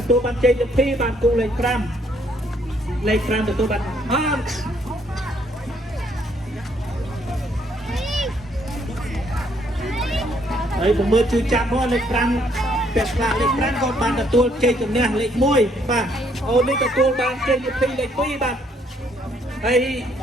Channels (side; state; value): both; normal; correlation 0.68